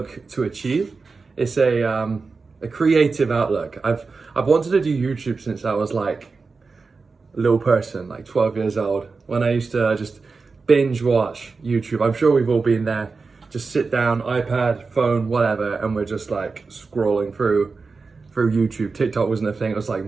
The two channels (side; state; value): left; quieter; 4.4 dB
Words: to achieve. It's a creative outlook. I've wanted to do YouTube since I was like a little person, like 12 years old, when I used to just binge watch YouTube. I'm sure we've all been there. Just sit down, iPad, phone, whatever, and we're just like scrolling through YouTube. TikTok wasn't a thing, it was like